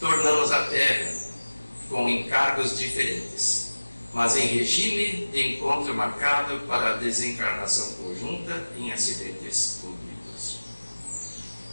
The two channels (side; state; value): both; inverted; correlation -1.00